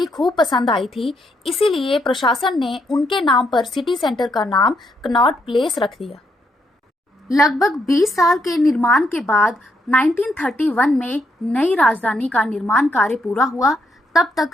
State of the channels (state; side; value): normal; both; correlation 0.76